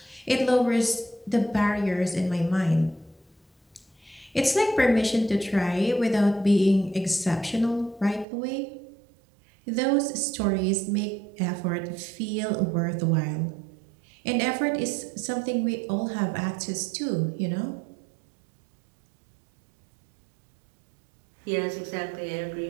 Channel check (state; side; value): drops out; left; at 8.2 s